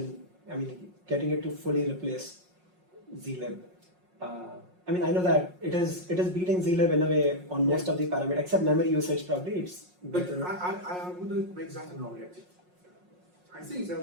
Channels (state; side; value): late; left; 5.5 ms